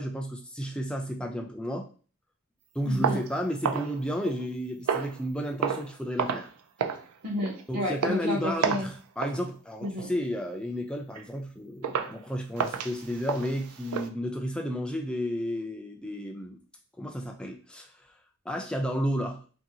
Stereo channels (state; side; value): normal; both; correlation 0.52